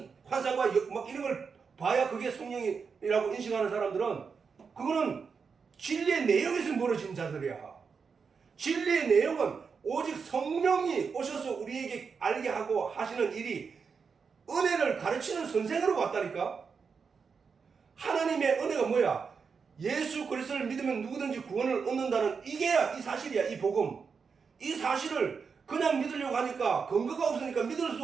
환상과 막 이런 걸 봐야 그게 성령이라고 인식하는 사람들은 그거는 진리의 내용에서 멀어진 자들이야. 진리의 내용은 오직 성령이 오셔서 우리에게 알게 하고 하시는 일이 은혜를 가르치는 선생으로 왔다니까. 하나님의 은혜가 뭐야? 예수 그리스도를 믿으면 누구든지 구원을 얻는다는 이게야 이 사실이야. 이 복음. 이 사실을 그냥 믿으려고 하니까 근거가 없으니까 믿을 수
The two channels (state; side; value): quieter; left; 5.6 dB